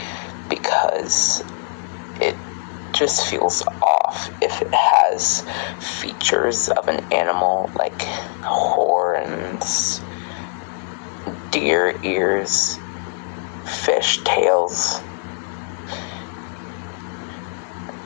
because it just feels off if it has features of an animal like horns, deer ears, fish tails,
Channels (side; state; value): right; silent; digital silence